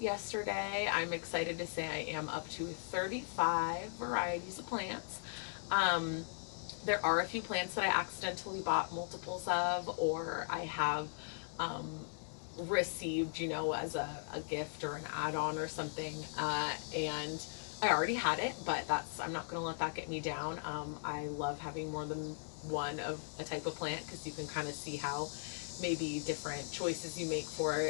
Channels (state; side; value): silent; right; digital silence